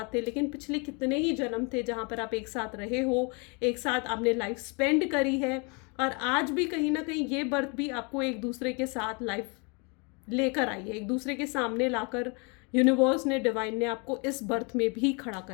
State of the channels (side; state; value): right; quieter; 32.5 dB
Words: थे, लेकिन पिछले कितने ही जन्म थे जहाँ पर आप एक साथ रहे हो, एक साथ आपने लाइफ स्पेंड करी है, और आज भी कहीं ना कहीं ये बर्थ भी आपको एक दूसरे के साथ लाइफ लेकर आई है, एक दूसरे के सामने लाकर यूनिवर्स ने, डिवाइन ने आपको इस बर्थ में भी खड़ा